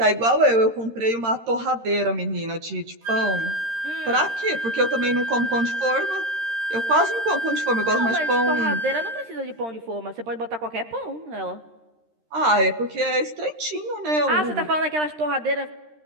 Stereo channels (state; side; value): late; left; 13 ms